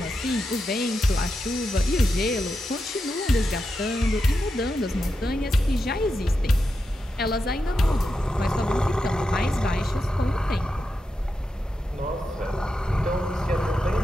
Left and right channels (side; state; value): both; normal; correlation 0.88